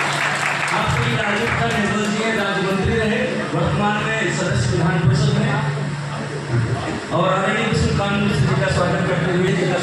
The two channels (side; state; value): both; identical; correlation 1.00